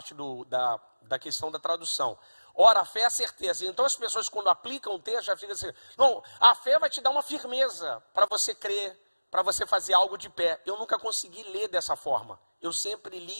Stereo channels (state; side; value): inverted; both; correlation -1.00